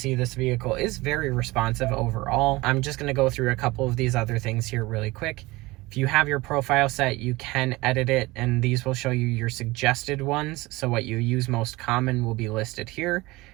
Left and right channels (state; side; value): quieter; left; 21.2 dB